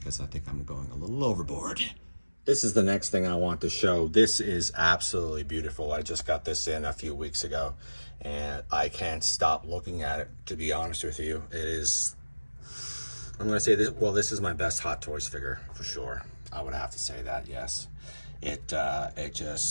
I think I'm going a little overboard. This is the next thing I want to show. This is absolutely beautiful. I just got this in a few weeks ago, and I can't stop looking at it, to be honest with you. It is, I'm gonna say this, well, this is my best Hot Toys figure for sure. I would have to say that, yes. It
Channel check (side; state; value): both; inverted; correlation -1.00